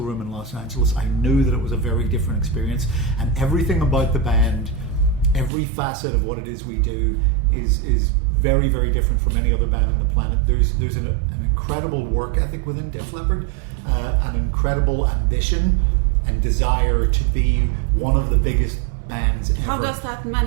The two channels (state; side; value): drops out; left; at 5.5 s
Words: room in Los Angeles, I knew that it was a very different experience, and everything about the band, every facet of what it is we do is very, very different from any other band on the planet. There's an incredible work ethic within Def Leppard, an incredible ambition and desire to be one of the biggest bands ever. How does that